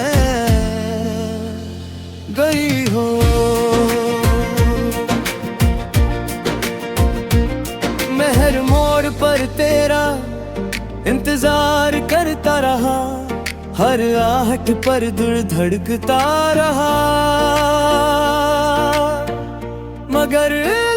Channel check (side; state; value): both; identical; correlation 1.00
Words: गई हो। मैं हर मोड़ पर तेरा इंतजार करता रहा, हर आहट पर दिल धड़कता रहा, मगर